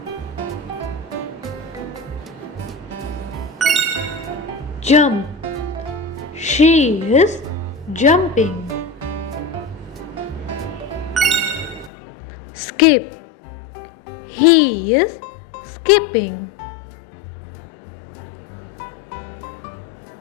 Jump. She is jumping. Skip. He is skipping.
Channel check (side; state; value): right; drops out; at 11.9 s